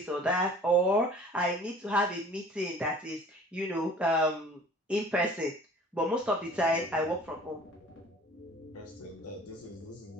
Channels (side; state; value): both; normal; correlation 0.48